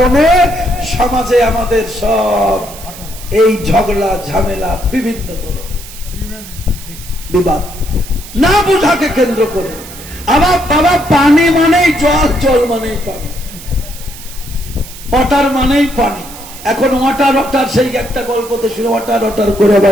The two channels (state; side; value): noise; right; hiss, 15 dB below the sound